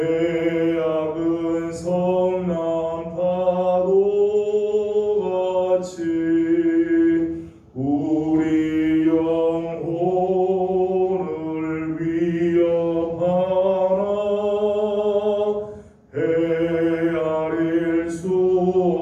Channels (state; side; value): identical; both; correlation 1.00